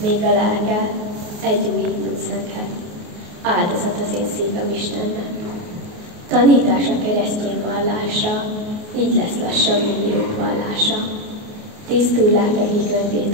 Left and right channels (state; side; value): late; left; 28 ms